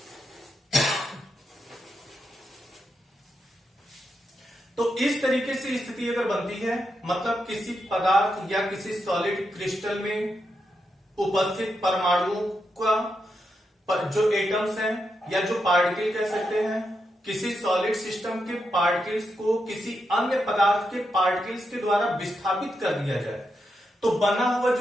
तो इस तरीके से स्थिति अगर बनती है, मतलब किसी पदार्थ या किसी सॉलिड क्रिस्टल में उपस्थित परमाणुओं का जो एटम्स हैं या जो पार्टिकल कह सकते हैं, किसी सॉलिड सिस्टम के पार्टिकल्स को किसी अन्य पदार्थ के पार्टिकल्स के द्वारा विस्थापित कर दिया जाए, तो बना हुआ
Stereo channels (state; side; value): normal; both; correlation 0.84